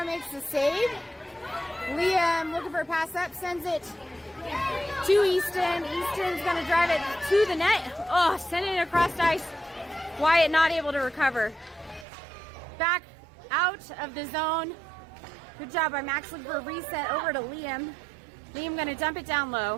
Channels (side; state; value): left; drops out; at 12.1 s